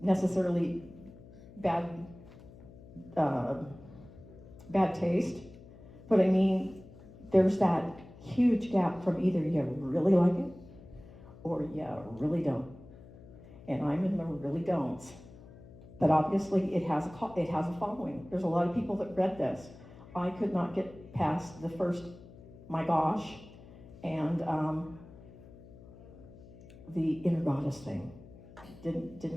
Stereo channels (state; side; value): noise; left; hum, 19 dB below the sound